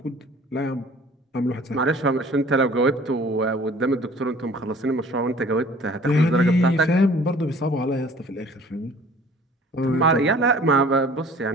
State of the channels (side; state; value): both; normal; correlation 0.50